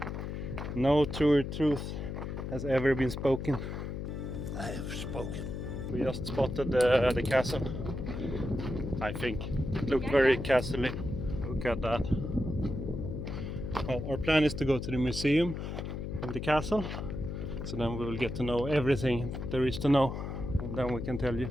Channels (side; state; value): left; noise; hum, 5 dB below the sound